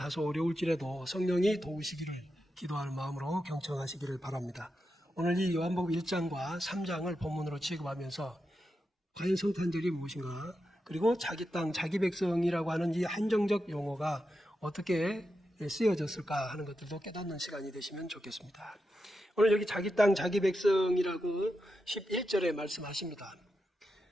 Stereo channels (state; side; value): normal; both; correlation 0.88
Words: 어려울지라도 성령이 도우시기를 기도하는 마음으로 경청하시기를 바랍니다. 오늘 이 요한복음 1장과 3장을 본문으로 취급하면서 과연 성탄절이 무엇인가, 그리고 자기 땅, 자기 백성이라고 하는 이 한정적 용어가 어떻게 쓰여졌을까 하는 것들도 깨닫는 시간이 되시면 좋겠습니다. 오늘 여기 자기 땅, 자기 백성이라고 11절에 말씀하십니다.